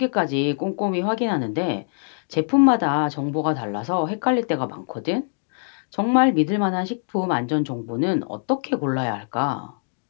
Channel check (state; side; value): silent; right; digital silence